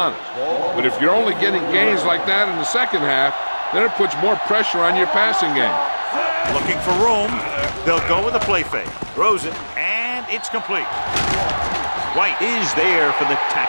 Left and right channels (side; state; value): both; inverted; correlation -1.00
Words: But if you're only getting gains like that in the second half, then it puts more pressure on your passing game. Looking for room. They'll go with a play fake. Throws it, and it's complete. White is there for the